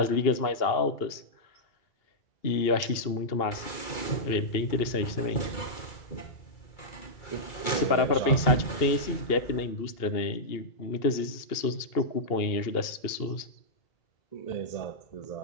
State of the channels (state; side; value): late; right; 2.8 ms